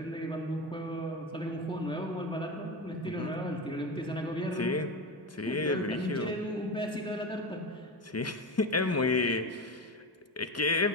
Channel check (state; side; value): normal; both; correlation 0.21